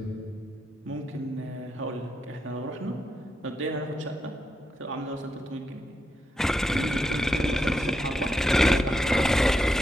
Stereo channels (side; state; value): both; normal; correlation 0.84